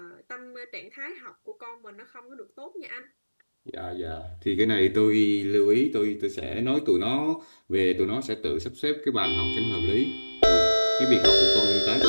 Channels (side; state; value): both; inverted; correlation -1.00